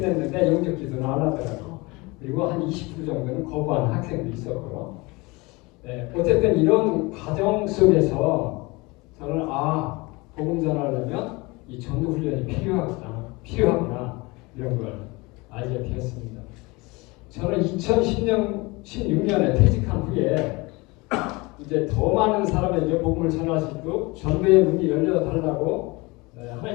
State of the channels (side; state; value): right; quieter; 24.7 dB